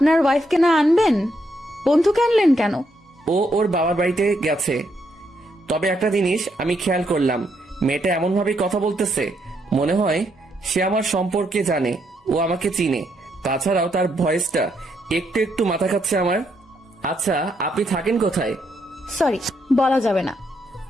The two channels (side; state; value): both; normal; correlation 0.77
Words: ওয়াইফকে না আনবেন? বন্ধুকে আনলেন কেন? ও ওর বাবার বাড়িতে গেছে। তবে একটা জিনিস আমি খেয়াল করলাম, মেয়েটা এমন ভাবে কথা বলতেছে মনে হয় সে আমার সম্পর্কে জানে, ও আমাকে চিনে। তাছাড়াও তার ভয়েসটা একটু একটু মাথা খাচ্ছে আমার। আচ্ছা, আপনি থাকেন কোথায়? সরি, বলা যাবে না।